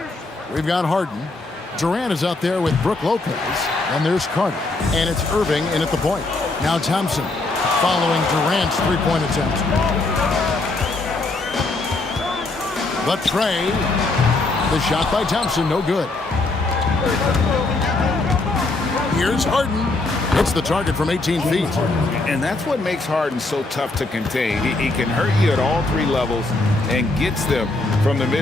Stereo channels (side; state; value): right; quieter; 3.2 dB